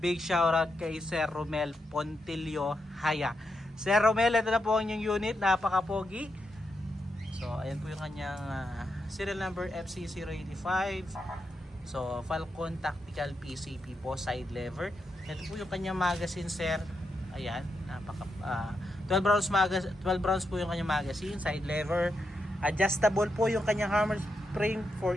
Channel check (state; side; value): normal; both; correlation 0.84